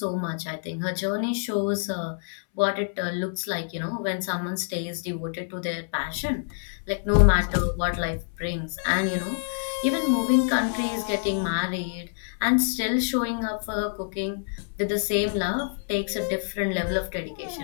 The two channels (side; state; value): right; silent; 60 dB below the other